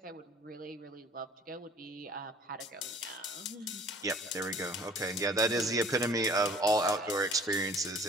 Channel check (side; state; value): both; normal; correlation 0.50